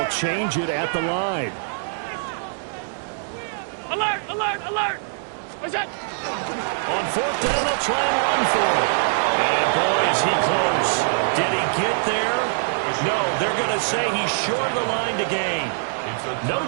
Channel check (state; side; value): silent; left; digital silence